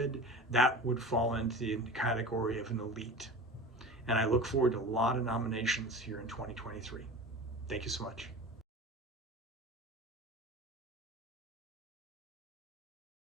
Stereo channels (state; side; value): normal; both; correlation 0.35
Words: that would fall into the category of an elite. And I look forward to a lot of nominations here in 2023. Thank you so much.